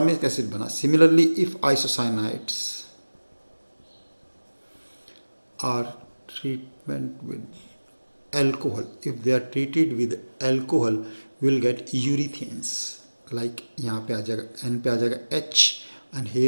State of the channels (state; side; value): inverted; both; correlation -1.00